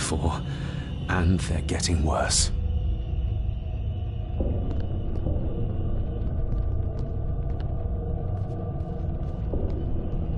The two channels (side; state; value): both; identical; correlation 1.00